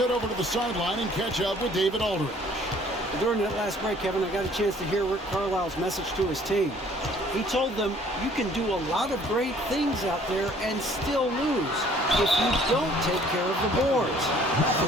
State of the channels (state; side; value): normal; both; correlation 0.57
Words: over to the sideline and catch up with David Aldridge. During that last break, Kevin, I got a chance to hear Rick Carlisle's message to his team. He told them, you can do a lot of great things out there and still lose if you don't take care of the boards. I